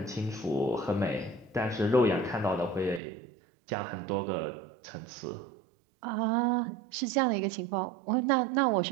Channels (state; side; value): drops out; left; at 3.0 s